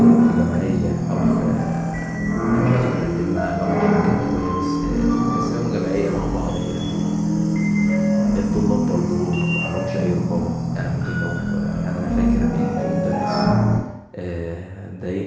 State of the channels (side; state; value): both; identical; correlation 1.00